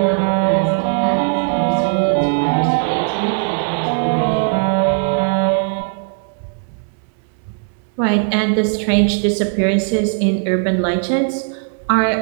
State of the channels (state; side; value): silent; left; 55 dB below the other